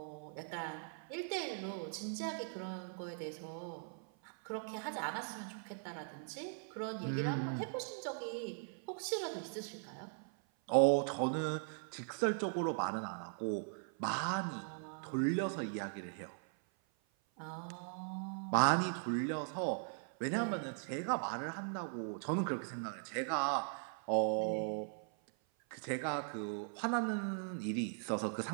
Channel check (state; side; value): silent; left; 51 dB below the other